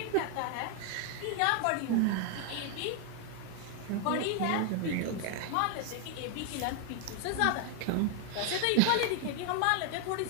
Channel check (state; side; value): different; both; correlation 0.01